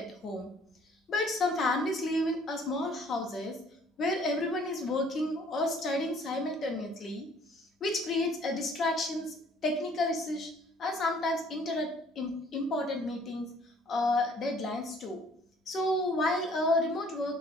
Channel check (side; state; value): both; normal; correlation 0.58